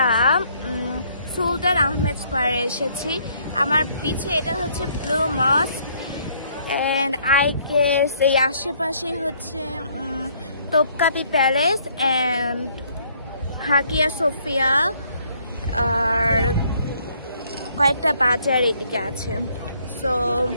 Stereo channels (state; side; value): inverted; both; correlation -0.65